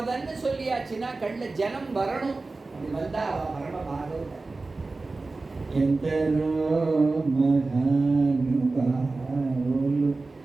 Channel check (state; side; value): quieter; left; 3.5 dB